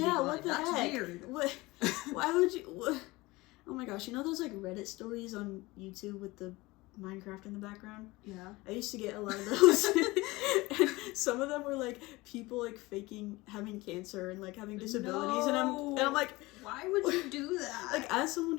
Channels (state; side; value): quieter; right; 21.4 dB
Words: What the That's heck? weird. What? Why would you... What? Oh my gosh, you know those, like, Reddit stories on YouTube with the Minecraft in the background? Yeah. I used to get a lot of those. And some of them were, like, people, like, faking having cancer and, like, having disabilities. No. And I'm like... Why would you do that? Like, as someone